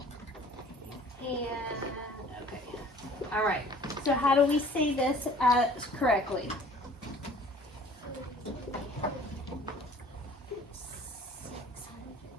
And, okay, all right. So how do we say this correctly?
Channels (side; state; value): both; normal; correlation 0.50